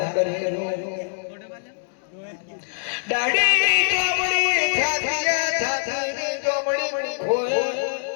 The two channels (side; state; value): right; silent; digital silence